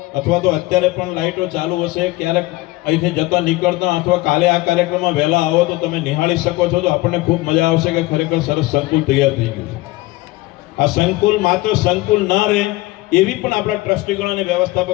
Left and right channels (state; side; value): quieter; right; 19.5 dB